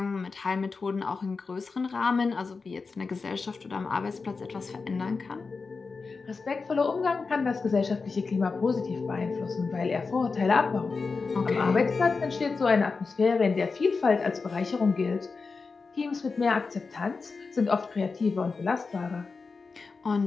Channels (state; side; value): quieter; right; 4.5 dB